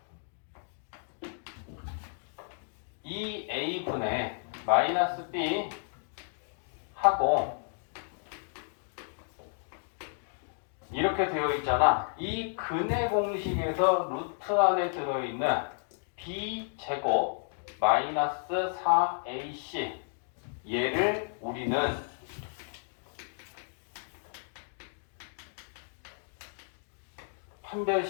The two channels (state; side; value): silent; right; digital silence